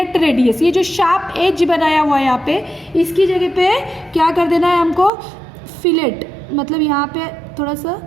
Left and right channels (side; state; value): left; drops out; at 5.1 s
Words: radius. ये जो शार्प एज बनाया हुआ है यहाँ पे, इसकी जगह पे क्या कर देना है हमको, फिलेट. मतलब यहाँ पे थोड़ा सा